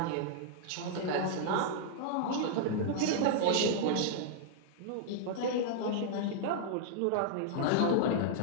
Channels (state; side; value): different; both; correlation -0.01